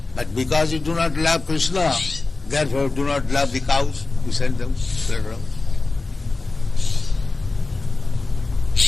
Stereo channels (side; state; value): right; quieter; 3.5 dB